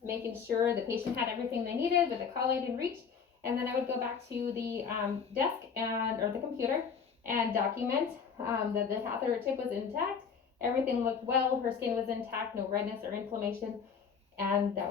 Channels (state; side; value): quieter; right; 6.3 dB